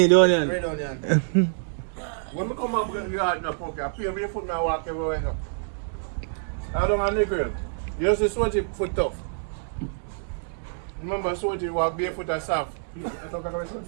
need onion. Red onion. When we come up with the yard now, Pokey, I pay barefoot and I walk everywhere now. I don't have any girl. You just see sweaty foot tough. Remember sweaty walk barefoot and soft. You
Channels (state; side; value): silent; left; digital silence